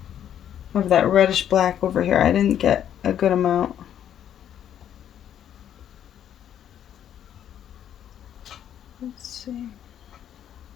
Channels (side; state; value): right; quieter; 10.1 dB